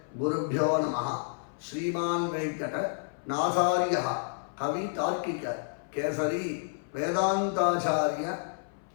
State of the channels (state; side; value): silent; right; 56 dB below the other